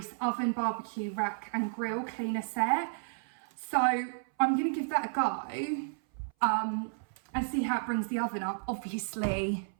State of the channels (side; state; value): left; silent; 56 dB below the other